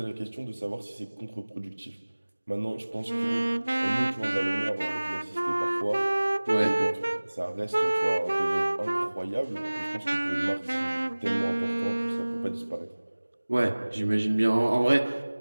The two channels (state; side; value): inverted; both; correlation -1.00